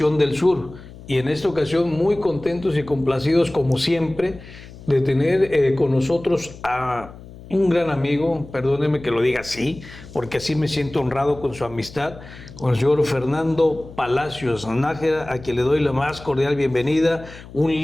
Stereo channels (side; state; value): left; noise; hum, 17 dB below the sound